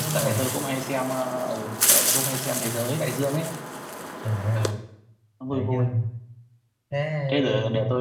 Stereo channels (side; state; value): both; identical; correlation 1.00